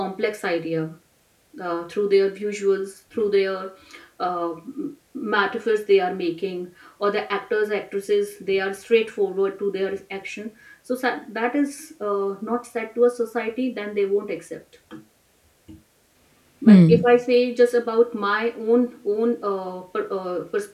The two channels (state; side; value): identical; both; correlation 1.00